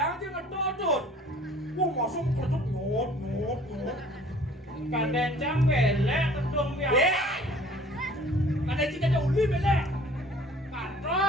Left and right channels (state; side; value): normal; both; correlation 0.51